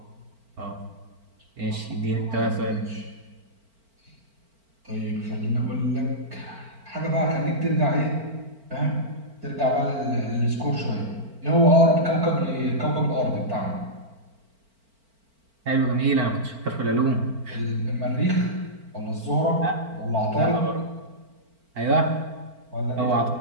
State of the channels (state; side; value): late; left; 4.4 ms